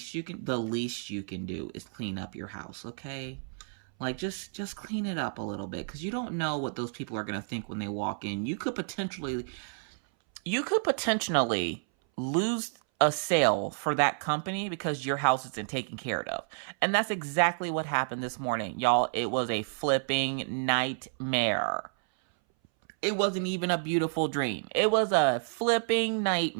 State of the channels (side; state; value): left; silent; 58 dB below the other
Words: you can do is clean up your house, okay? Like, just clean it up a little bit, because you don't know what those people are going to think when they walk in. You could potentially lose a sale for that company because your house isn't taken care of. And that's exactly what happened this morning. Y'all, it was a flipping nightmare. It wasn't even a beautiful dream. It was a flipping